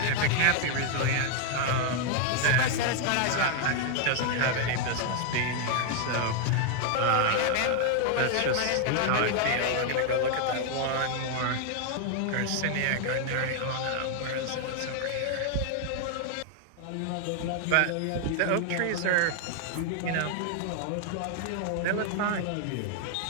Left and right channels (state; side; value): different; both; correlation 0.00